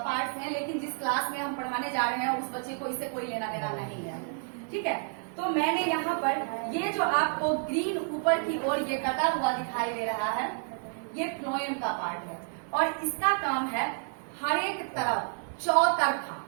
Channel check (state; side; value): silent; left; 58 dB below the other